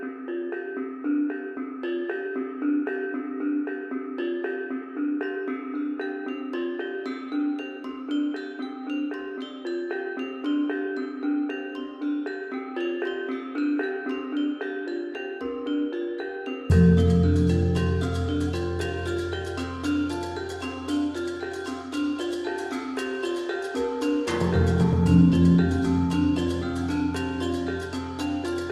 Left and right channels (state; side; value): identical; both; correlation 1.00